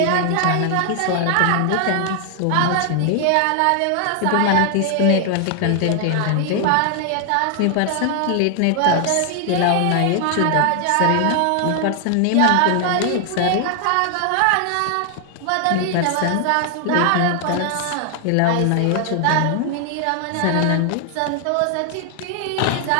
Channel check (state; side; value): different; both; correlation 0.00